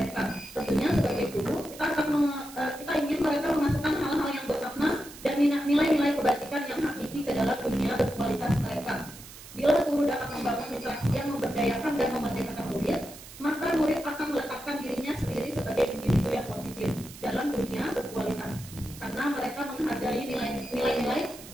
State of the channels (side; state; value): right; noise; hiss, 16 dB below the sound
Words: Tentunya sebagai guru, kita ingin mereka memasukkan hal-hal yang bermakna dan nilai-nilai kebajikan yang hakiki ke dalam dunia berkualitas mereka. Bila guru dapat membangun interaksi yang memberdayakan dan memerdekakan murid, maka murid akan meletakkan dirinya sendiri sebagai individu yang positif dalam dunia berkualitas, karena mereka menghargai nilai-nilai